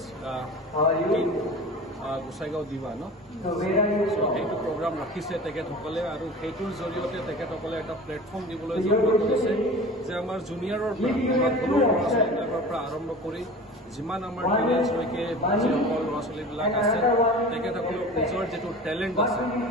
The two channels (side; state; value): both; normal; correlation 0.37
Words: Gossaigaon দিবা ন সেইটো প্ৰগ্ৰাম ৰাখিছে তেখেতসকলে আৰু সেইটোৰ জৰিয়তে তেখেতসকলে এটা প্লেটফৰ্ম দিবলৈ যত্ন কৰিছে যে আমাৰ জুনিয়ৰৰ সৰু ল'ৰা ছোৱালীবিলাকৰ পৰা আৰম্ভ কৰি যিমান আমাৰ টিনেজলৈকে যিসকল ল'ৰা ছোৱালীবিলাক আছে তেখেতসকলৰ নিজৰ যিটো টেলেণ্ট আছে